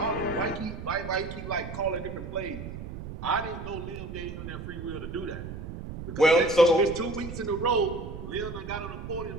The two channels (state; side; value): noise; right; rumble, 9 dB below the sound